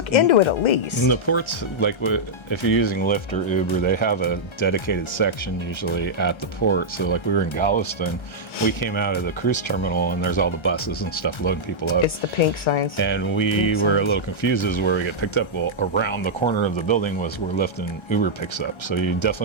into it at least. And the ports, like if you're using Lyft or Uber, they have a dedicated section usually at the port. So like we were in Galveston, we came out of the cruise terminal and there's all the buses and stuff loading people up. It's the pink signs. And we were a little confused as where we get picked up. Well, around the corner of the building was where Lyft and Uber picks up. So you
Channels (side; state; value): right; late; 1.3 ms